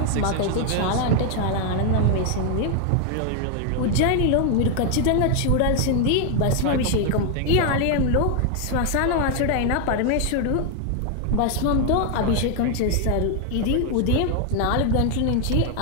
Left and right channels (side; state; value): both; different; correlation 0.00